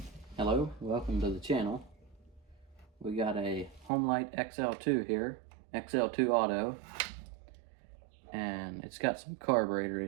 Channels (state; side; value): drops out; left; at 3.9 s